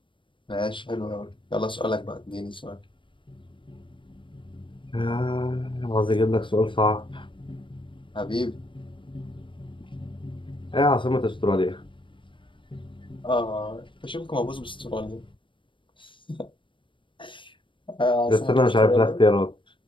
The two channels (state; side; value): late; right; 0.24 ms